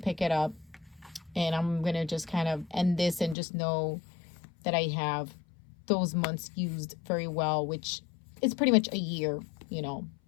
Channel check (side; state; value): right; drops out; at 3.4 s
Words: it up. And I'm going to just kind of end this and just know that I have those months used very well, which is pretty much a year,